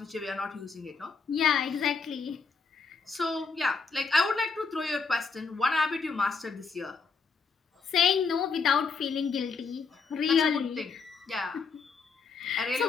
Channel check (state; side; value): quieter; right; 5.0 dB